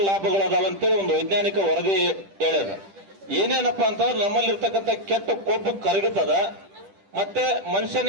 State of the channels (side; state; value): left; late; 10 ms